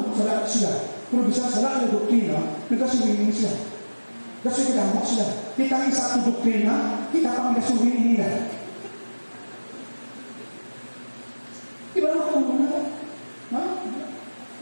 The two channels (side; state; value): both; inverted; correlation -1.00